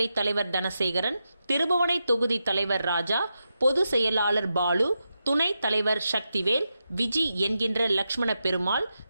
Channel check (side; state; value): both; inverted; correlation -0.88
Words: தலைவர் தனசேகரன், திருபுவனை தொகுதி தலைவர் ராஜா, பொது செயலாளர் பாலு, துணைத் தலைவர் சக்திவேல், விஜி என்கின்ற லக்ஷ்மண பெருமாள்,